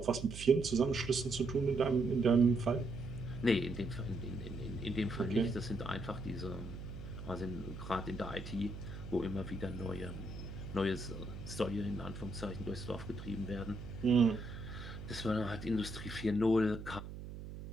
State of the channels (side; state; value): right; noise; hum, 10 dB below the sound